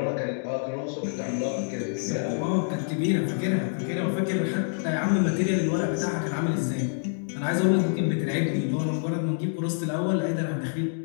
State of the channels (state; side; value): silent; right; digital silence